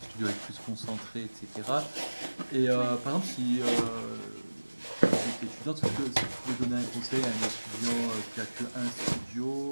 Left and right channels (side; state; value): both; inverted; correlation -1.00